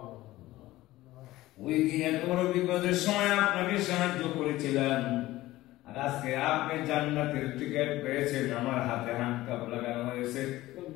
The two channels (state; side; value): quieter; right; 17.0 dB